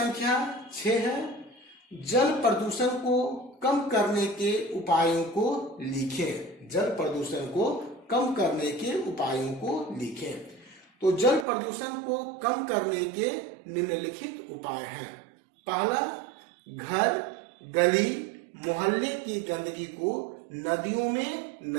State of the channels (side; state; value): left; drops out; at 11.5 s